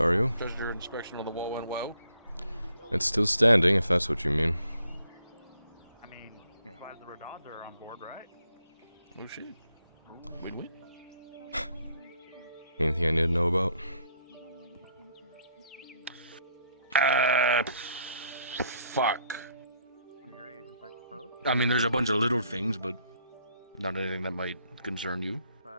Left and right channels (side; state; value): both; inverted; correlation -0.69